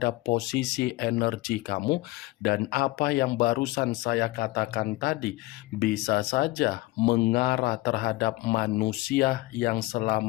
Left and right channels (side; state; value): right; quieter; 19.6 dB